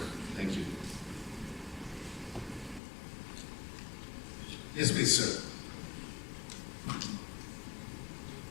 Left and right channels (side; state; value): right; drops out; at 2.8 s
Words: Thank you. Yes, please, sir.